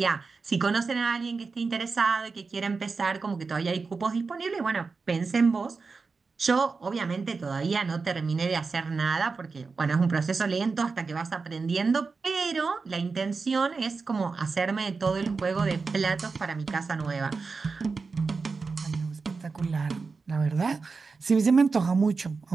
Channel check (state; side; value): quieter; left; 4.5 dB